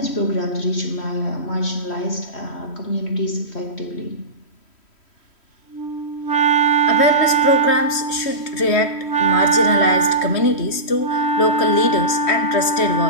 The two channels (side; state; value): right; late; 3.1 ms